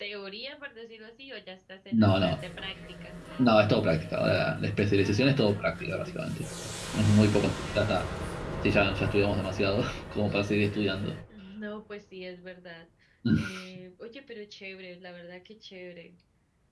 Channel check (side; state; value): both; identical; correlation 1.00